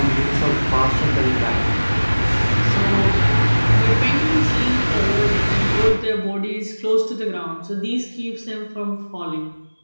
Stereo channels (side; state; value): both; inverted; correlation -1.00